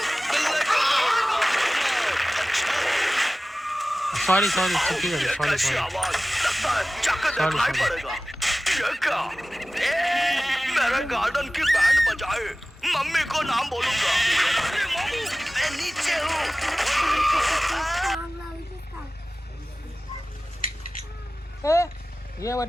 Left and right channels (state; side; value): normal; both; correlation 0.96